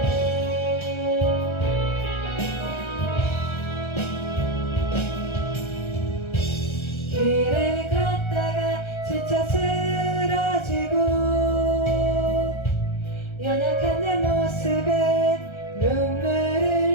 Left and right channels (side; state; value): right; late; 1.3 ms